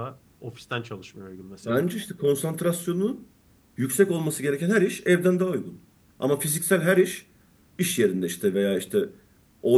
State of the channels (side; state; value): both; identical; correlation 1.00